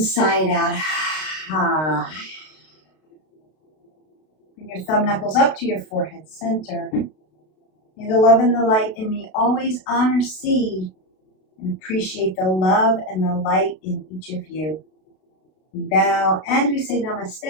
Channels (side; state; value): right; late; 32 ms